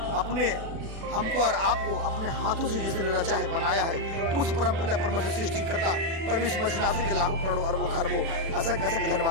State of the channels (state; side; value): late; left; 36 ms